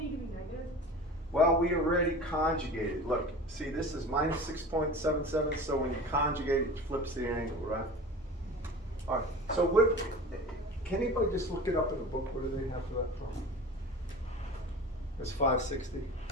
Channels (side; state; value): both; normal; correlation 0.37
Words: to be negative? Well, we already conjugated. Look, see, this is minus 6.77, so when you conjugate it, it flips the angle, right? All right, so what, can anybody just look it up in the book? What do they have for that from? It's 560?